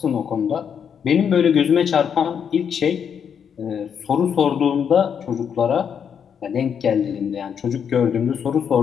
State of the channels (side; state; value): right; quieter; 7.6 dB